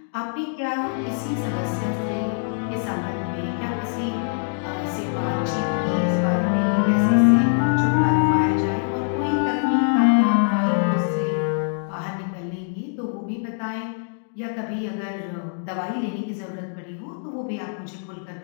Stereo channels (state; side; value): silent; right; digital silence